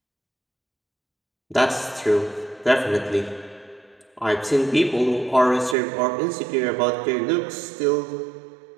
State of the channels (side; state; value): left; drops out; at 5.8 s